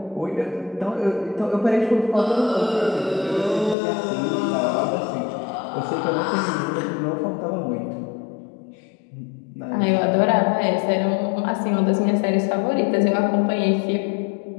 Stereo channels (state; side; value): drops out; right; at 3.8 s